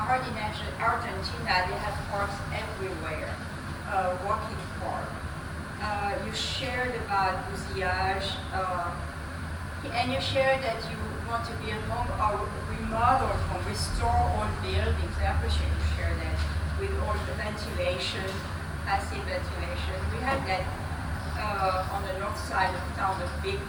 they have parks everywhere, walking park. You shared about bousillage, and you shared that you want to build home or remodel home, restore old buildings. I appreciate you share that with all the ventilation, passive ventilation. We have that on the north side of town, the big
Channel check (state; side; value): identical; both; correlation 1.00